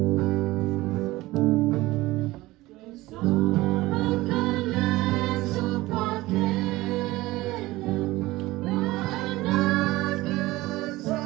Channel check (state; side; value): quieter; left; 18.8 dB